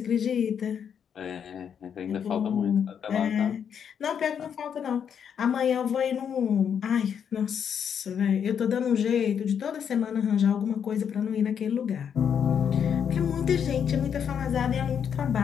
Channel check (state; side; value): quieter; right; 7.8 dB